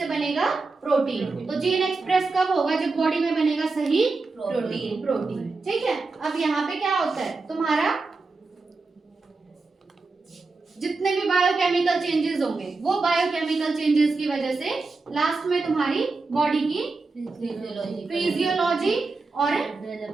बनेगा प्रोटीन। तो जीन एक्सप्रेस कब होगा? जब बॉडी में बनेगा सही प्रोटीन। ठीक है। अब यहाँ पे क्या होता है? तुम्हारा जितने भी बायोकेमिकल चेंजेस होंगे वो बायोकेमिकल चेंजेस की वजह से लास्ट में तुम्हारी बॉडी की फिजियोलॉजी और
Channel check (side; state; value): left; quieter; 3.9 dB